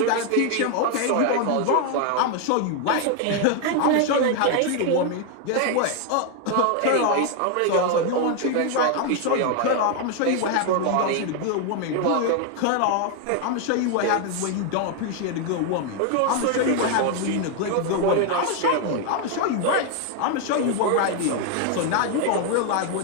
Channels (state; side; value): different; both; correlation 0.01